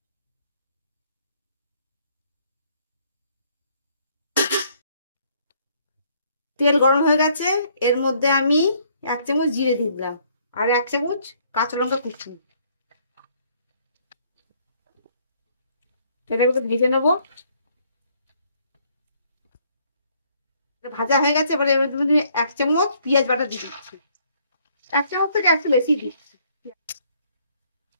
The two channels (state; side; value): inverted; both; correlation -0.65